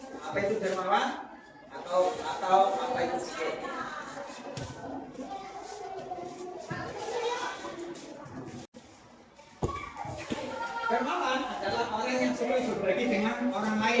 Apa itu dermawan? Atau apa itu kikir? Dermawan adalah orang yang suka berbagi dengan orang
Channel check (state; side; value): identical; both; correlation 1.00